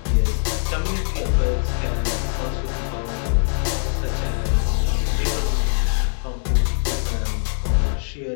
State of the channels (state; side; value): silent; right; digital silence